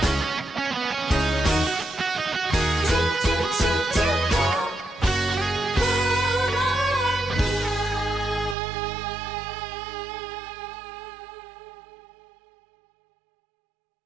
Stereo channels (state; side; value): drops out; left; at 8.6 s